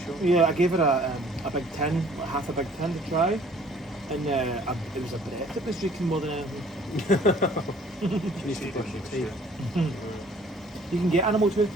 chunk. yeah, I gave her a big tin, like half a big tin to try. And it was a breath that was drinking more than anything. She needs to brush your teeth. You can get animal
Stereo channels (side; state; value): both; normal; correlation 0.55